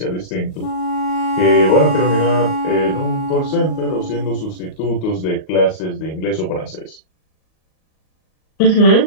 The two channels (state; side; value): late; right; 38 ms